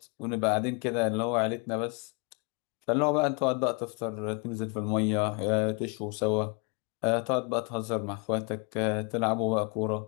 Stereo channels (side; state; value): right; quieter; 33.5 dB